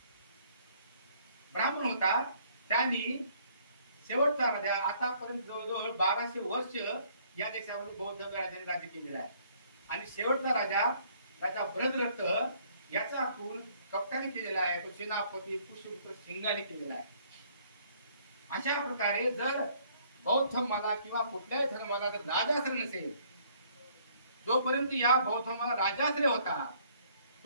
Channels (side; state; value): both; inverted; correlation -0.62